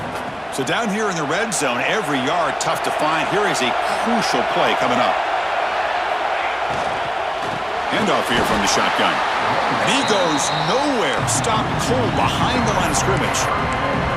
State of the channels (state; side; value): identical; both; correlation 1.00